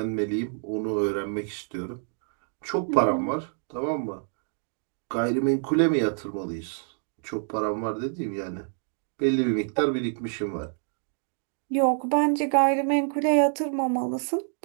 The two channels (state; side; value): silent; left; 60 dB below the other